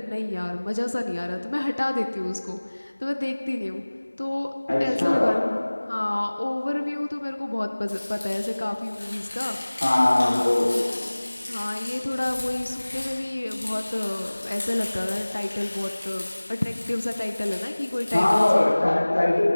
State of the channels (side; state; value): both; inverted; correlation -1.00